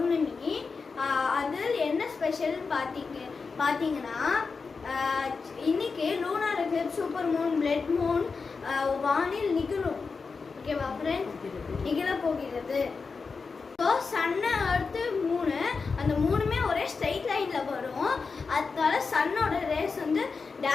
அதில் என்ன ஸ்பெஷல்னு பார்த்தீங்கன்னா இன்னைக்கு lunar Eclipse, super Moon, blood Moon வானில் நிகழும். ஓகேவா ஃப்ரெண்ட்ஸ்? நிகழ போகிறது. ஸோ சன்னு, எர்த்து, மூணு, அந்த மூணுமே ஒரே ஸ்ட்ரைட் லைனில் வரும். அதனால சன்னோட ரேஸ் வந்து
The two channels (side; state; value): right; quieter; 4.8 dB